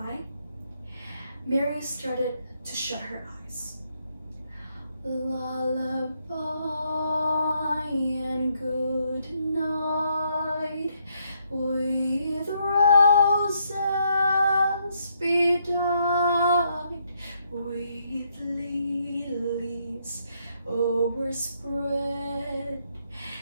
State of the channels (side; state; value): both; inverted; correlation -0.74